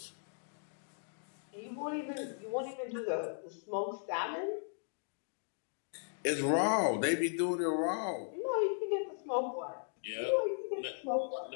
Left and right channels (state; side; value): silent; right; digital silence